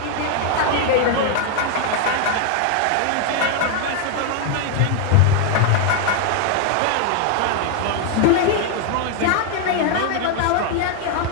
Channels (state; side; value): different; both; correlation 0.01